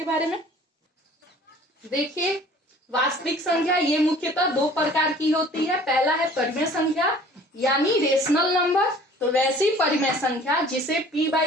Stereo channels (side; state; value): both; normal; correlation 0.50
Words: बारे में। देखिए वास्तविक संख्या ये मुख्यतः दो प्रकार की होती है। पहला है परिमेय संख्या यानी रेशनल नंबर। तो वैसी परिमेय संख्या जिसे